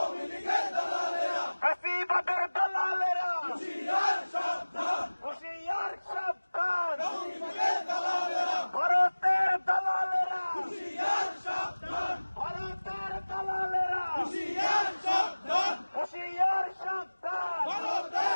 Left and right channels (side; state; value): both; inverted; correlation -1.00